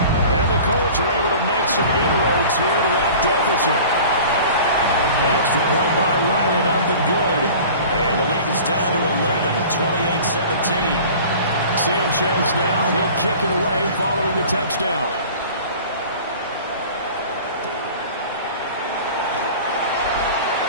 And the Colts are able to make some inroads here to that deficit. Extra point by Ryland up and good. And the lead is down to 11 at 28-17. Sanchez now, he'll kick it away following the touchdown.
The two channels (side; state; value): both; inverted; correlation -0.42